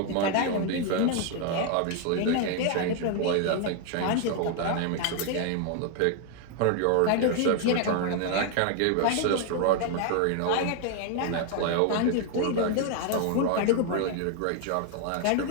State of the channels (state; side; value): different; both; correlation 0.00